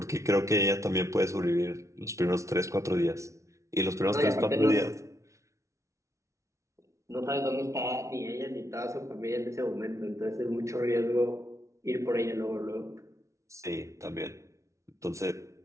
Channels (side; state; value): left; late; 0.14 ms